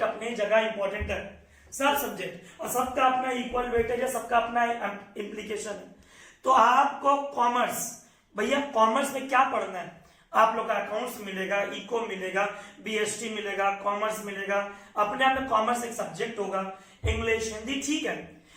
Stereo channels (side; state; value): both; identical; correlation 1.00